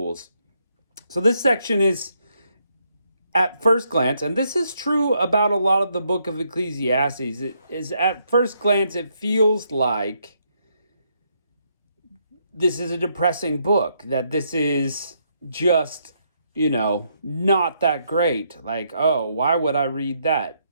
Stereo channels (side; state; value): both; inverted; correlation -0.75